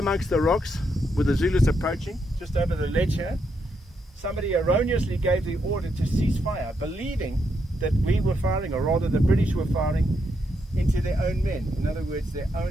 the rocks, with the Zulus approaching, just over the ledge here, somebody erroneously gave the order to cease fire, believing that we were firing, or rather the British were firing, into their own men. In other words, their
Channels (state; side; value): normal; both; correlation 0.79